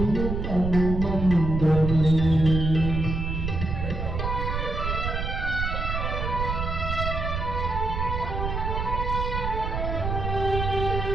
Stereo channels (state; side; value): noise; right; rumble, 2 dB below the sound